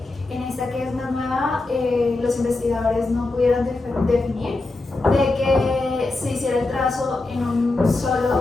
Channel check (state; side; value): quieter; right; 3.2 dB